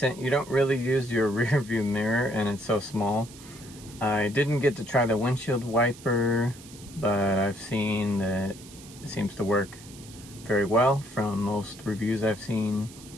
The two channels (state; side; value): noise; right; hiss, 19 dB below the sound